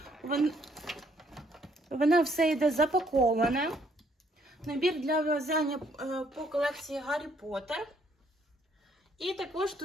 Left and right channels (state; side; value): normal; both; correlation 0.68